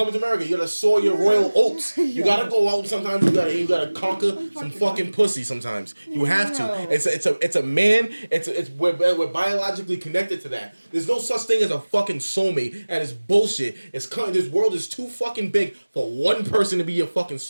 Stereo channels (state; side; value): inverted; both; correlation -1.00